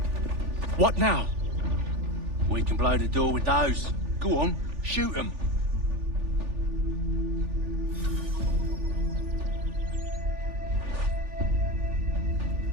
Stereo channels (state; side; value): late; left; 3.4 ms